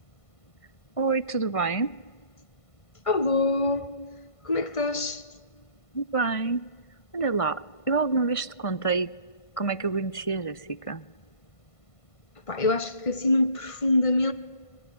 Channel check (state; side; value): late; right; 1.5 ms